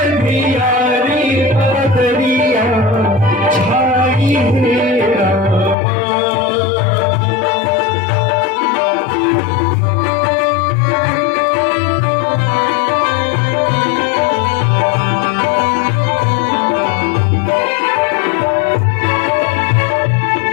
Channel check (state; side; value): drops out; right; at 5.8 s